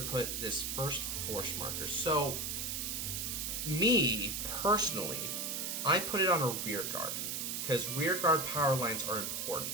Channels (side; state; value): right; noise; hiss, 2 dB below the sound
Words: put this first force marker. So me personally, I put it on a rear guard because rear guard power lines are important.